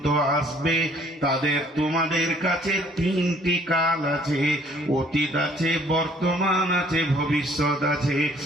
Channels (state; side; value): normal; both; correlation 0.59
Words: আসবে, তাদের তোমাদের কাছে 3টি কাল আছে, অতীত আছে, বর্তমান আছে, ভবিষ্যৎ আছে।